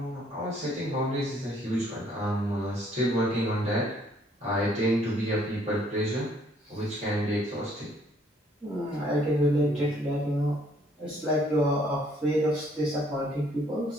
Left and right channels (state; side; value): normal; both; correlation 0.64